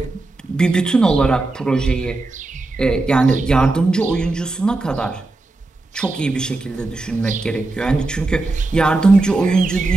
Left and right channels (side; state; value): left; quieter; 3.2 dB